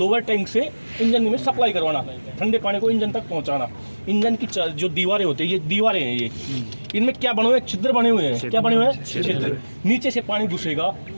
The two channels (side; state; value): both; inverted; correlation -1.00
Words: टैंक से इंजन में सप्लाई करवाना, ठंडे पानी को इंजन तक पहुंचाना। इंजन की जो दीवारें होती है, ये दीवारें हैं, ये इनमें क्या बने हुए हैं, छिद्र बने हुए हैं। क्या बने हुए हैं, छिद्र। नीचे से पानी घुसेगा